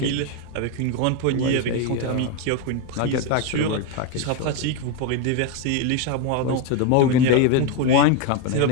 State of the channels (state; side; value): different; both; correlation 0.02